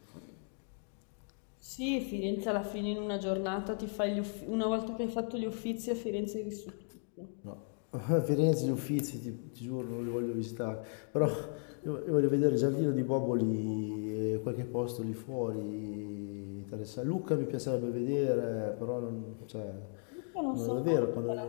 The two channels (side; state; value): right; silent; 54 dB below the other